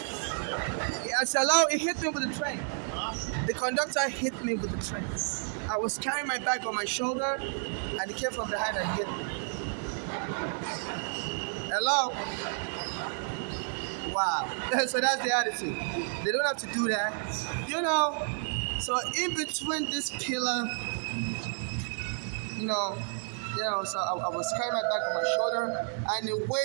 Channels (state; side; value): silent; left; 57 dB below the other